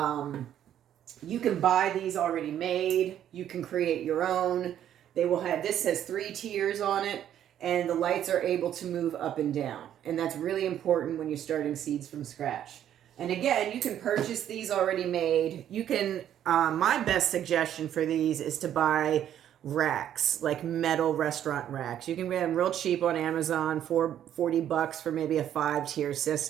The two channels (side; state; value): left; quieter; 10.6 dB